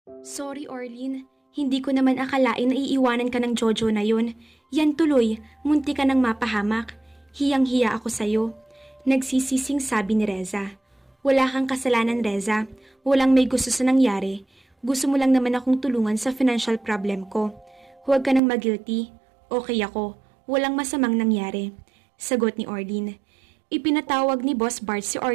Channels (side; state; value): left; drops out; at 18.4 s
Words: Sorry, Orlin. Hindi ko naman akalain na iiwanan ka ng Jojo na yun. Yan tuloy, munti ka nang mapahamak. Hiyang-hiya ako sa'yo. Nagsisising sabi ni Reza. Wala kang kasalanan, Reza. Walang may gusto sa nangyari. Gusto mo lang naman akong tulungan sa financial problem ko. Huwag ka nang mag-guilty. Okay ako. Walang masamang nangyari. Sagot ni Orlin. Ipinatawag ni Boss Bart si